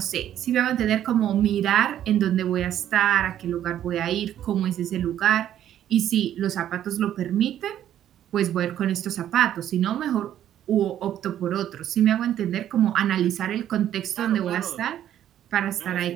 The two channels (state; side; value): quieter; left; 11.2 dB